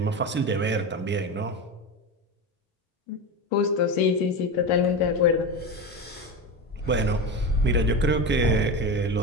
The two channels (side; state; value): both; normal; correlation 0.21